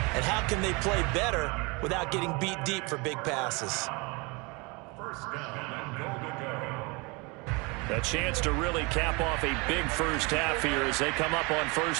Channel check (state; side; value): quieter; left; 27.9 dB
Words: and how can they play better without getting beat deep for big passes. First down and goal to go. A chance to really cap off a big first half here as they come up on